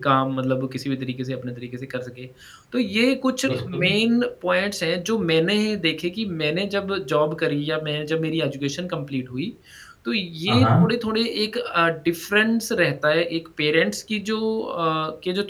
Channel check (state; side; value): identical; both; correlation 1.00